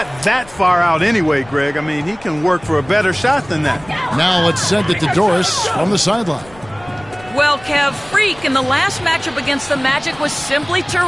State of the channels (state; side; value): noise; left; rumble, 22 dB below the sound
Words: that far out anyway, Greg. I mean, he can work for a better shot than that. Now it's sent it to Doris from the sideline. Well, Kev, Freak in the last matchup against the Magic was simply